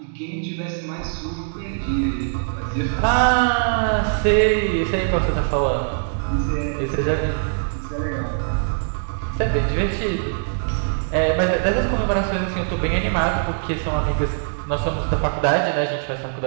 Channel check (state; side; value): silent; left; digital silence